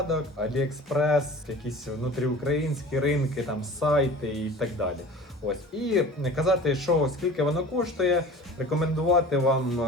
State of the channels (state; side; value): normal; both; correlation 0.41